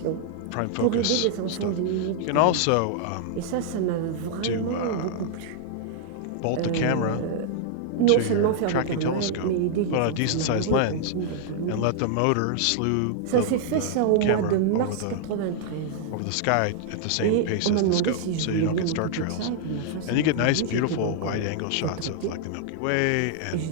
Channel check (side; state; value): both; different; correlation -0.01